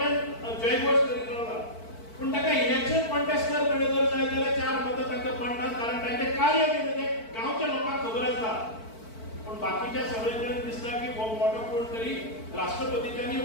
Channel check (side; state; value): right; late; 4.5 ms